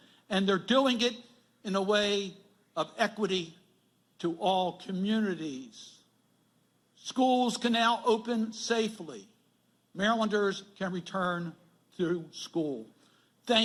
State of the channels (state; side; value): identical; both; correlation 1.00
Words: And they're doing it in a way of equity to all communities. Schools can now open safely. Marylanders can return to school.